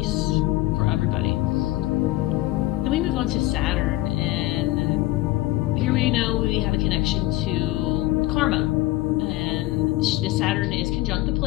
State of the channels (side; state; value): right; quieter; 17.4 dB